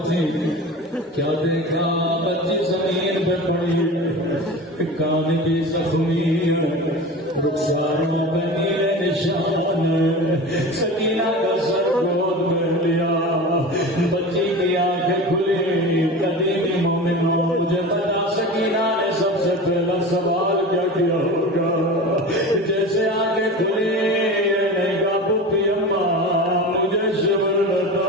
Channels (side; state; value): both; normal; correlation 0.32